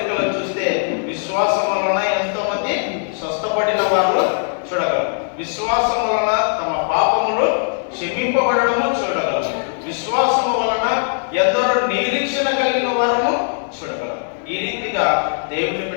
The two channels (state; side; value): silent; right; 62 dB below the other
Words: చూస్తే విశ్వాసం వలన ఎంతో మంది స్వస్థపడిన వారు చూడగలరు. విశ్వాసం వలన తమ పాపములు క్షమింపబడము చూడగలరు. విశ్వాసము వలన ఎందరో నిరీక్షణ కలిగిన వారము చూడగలరు. ఈ రీతిగా దేవుని